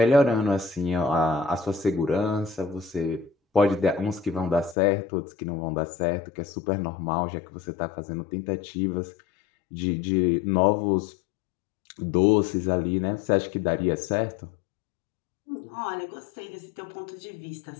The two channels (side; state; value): right; drops out; at 4.8 s